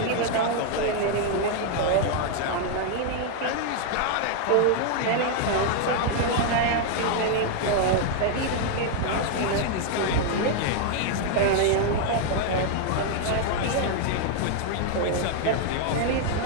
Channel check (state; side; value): different; both; correlation 0.00